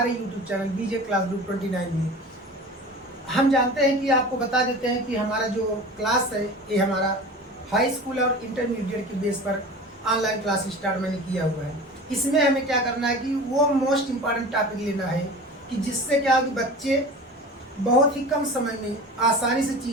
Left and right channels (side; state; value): both; normal; correlation 0.36